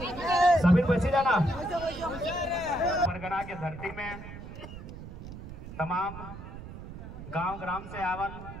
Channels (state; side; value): noise; right; rumble, 12 dB below the sound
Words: सभी बची जाना। परगना की धरती में तमाम गांव ग्राम से आवल